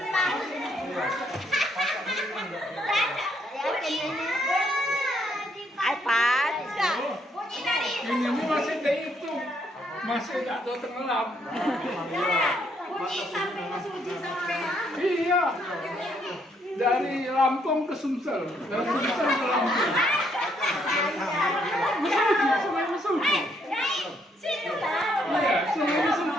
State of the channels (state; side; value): normal; both; correlation 0.71